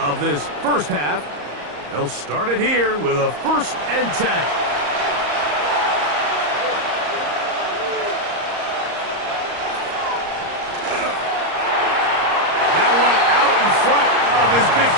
this 1st half. They'll start it here with a 1st and 10. His big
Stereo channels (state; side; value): late; left; 34 ms